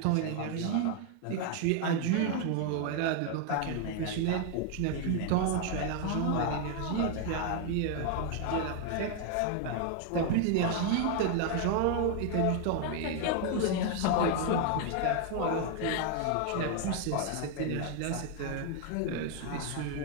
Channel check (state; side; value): different; both; correlation 0.00